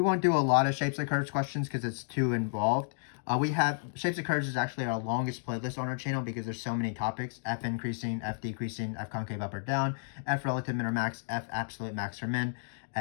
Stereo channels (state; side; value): silent; right; digital silence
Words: do a lot of shapes of curves questions because it's too involved. We have shapes of curves is actually our longest playlist on our channel because there's so many topics: f increasing, f decreasing, f concave up or down, f relative min or max, f absolute max or min,